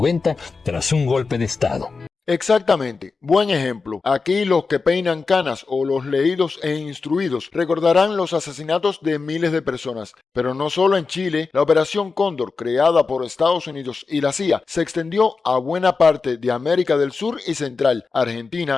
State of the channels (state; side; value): quieter; right; 4.5 dB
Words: tras un golpe de Estado. Exactamente, buen ejemplo. Aquí los que peinan canas o los leídos e instruidos recordarán los asesinatos de miles de personas. Pero no solo en Chile, la Operación Cóndor, creada por Estados Unidos y la CIA, se extendió a buena parte de América del Sur y Central,